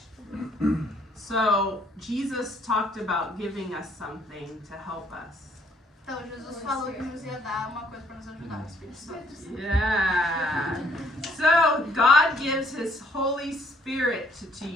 So, Jesus talked about giving us something to help us. Então, Jesus falou que nos ia dar uma coisa para nos ajudar, o Espírito Santo. Yeah. So God gives His Holy Spirit to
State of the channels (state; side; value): normal; both; correlation 0.66